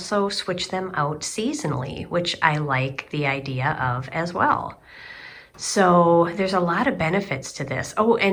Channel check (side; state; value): both; identical; correlation 1.00